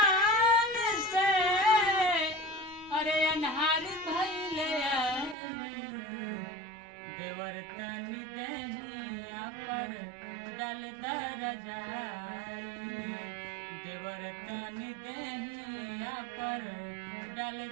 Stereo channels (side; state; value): left; drops out; at 5.4 s